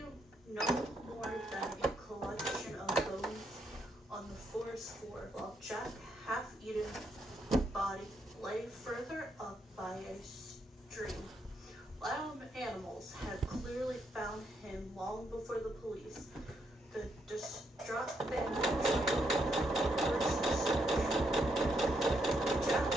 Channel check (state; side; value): normal; both; correlation 0.77